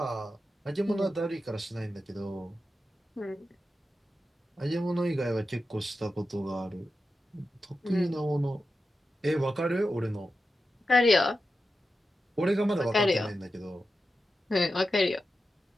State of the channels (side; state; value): both; normal; correlation 0.91